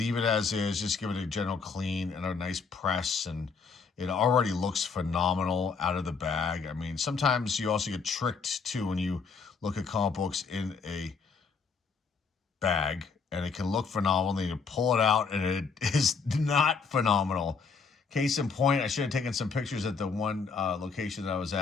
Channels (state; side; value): quieter; right; 5.2 dB